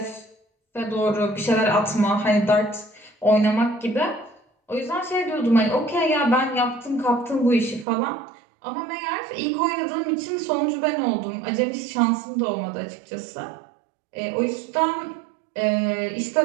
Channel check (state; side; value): drops out; left; at 7.9 s